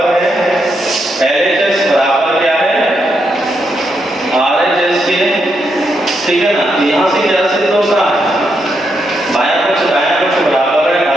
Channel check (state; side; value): normal; both; correlation 0.81